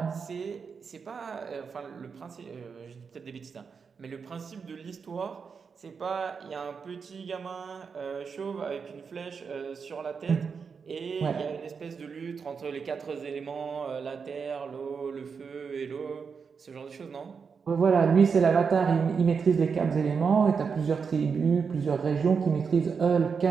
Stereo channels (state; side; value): quieter; left; 5.8 dB